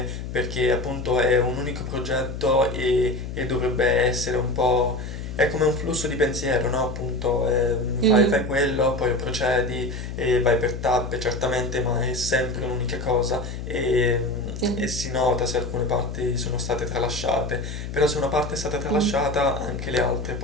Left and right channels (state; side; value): noise; left; hum, 7 dB below the sound